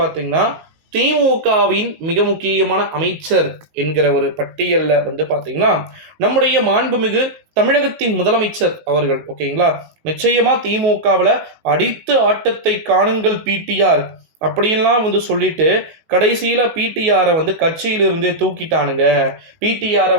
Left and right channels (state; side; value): late; left; 19 ms